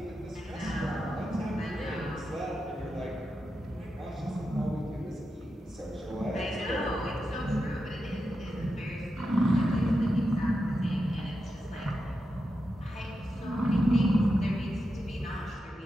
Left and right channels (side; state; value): both; normal; correlation 0.88